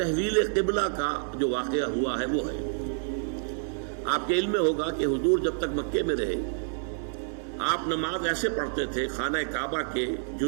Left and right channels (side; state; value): left; silent; digital silence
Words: قبلہ کا جو واقعہ ہوا ہے وہ ہے، آپ کے علم میں ہوگا کہ حضور جب تک مکے میں رہے آپ نماز ایسے پڑھتے تھے، خانہ کعبہ کے